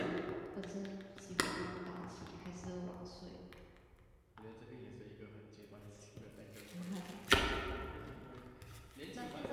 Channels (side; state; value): both; identical; correlation 1.00